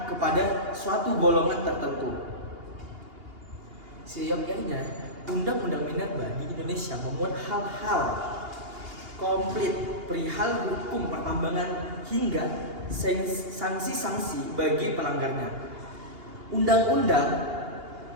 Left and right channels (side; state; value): left; late; 2.8 ms